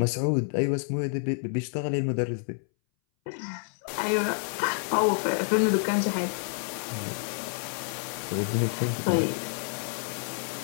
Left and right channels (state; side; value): silent; right; 59 dB below the other